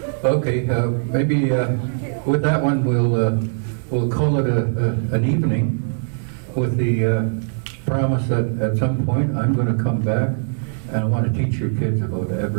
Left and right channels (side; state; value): left; silent; digital silence